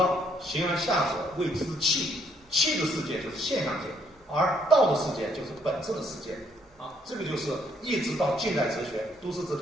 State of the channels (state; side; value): normal; both; correlation 0.69